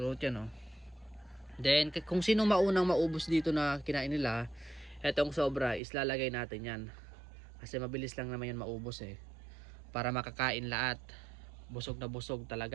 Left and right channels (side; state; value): left; drops out; at 5.8 s